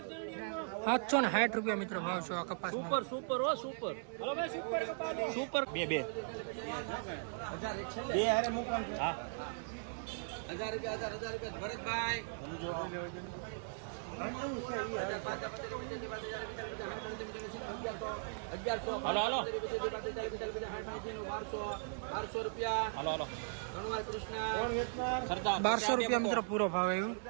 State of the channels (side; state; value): left; silent; 52 dB below the other